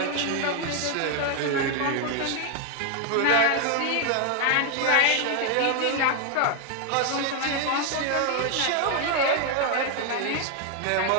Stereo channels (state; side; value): different; both; correlation 0.01